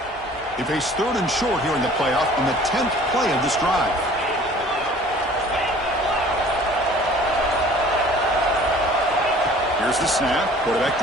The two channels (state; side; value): normal; both; correlation 0.50